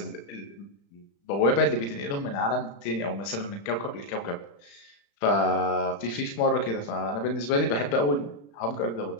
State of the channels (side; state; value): right; late; 35 ms